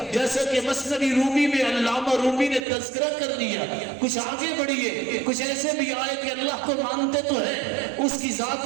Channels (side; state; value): left; drops out; at 2.7 s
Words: جیسا کہ مثنوی رومی میں علامہ رومی نے تذکرہ کر دیا۔ کچھ آگے بڑھیے، کچھ ایسے بھی آئے کہ اللہ کو مانتے تو ہے، اس کی ذات